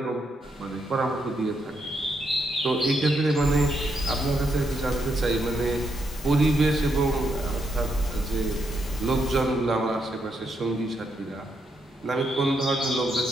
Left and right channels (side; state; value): both; normal; correlation 0.79